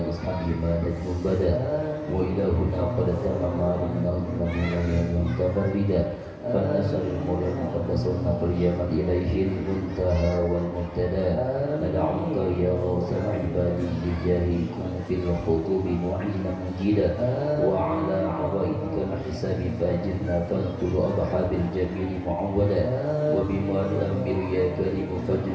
وأصحابه ما نجم بدا وإلى هنا قد تمام علمنا من متفردا فالنسر المولى المقدس والنقل يمد إليه المنتهى والمبتدا ندعوك يا غوث العباد بجاهكم في الخطوب معينا مجيدا وعلى عوائدك الحساب فاجرنا فاغفر أضحى بالجميل معودا وبما نؤمر يا كريم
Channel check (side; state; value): both; identical; correlation 1.00